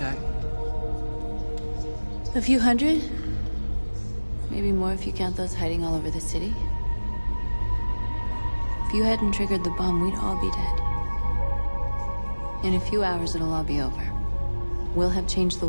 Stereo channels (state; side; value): inverted; both; correlation -1.00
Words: A few hundred? Maybe more if you count those hiding all over the city. If you hadn't triggered the bomb, we'd all be dead. In a few hours, it'll all be over. We'll have changed the